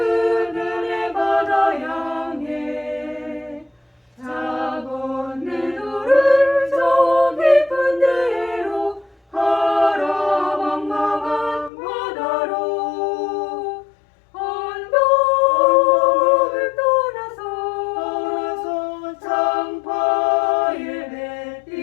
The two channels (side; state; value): right; drops out; at 11.7 s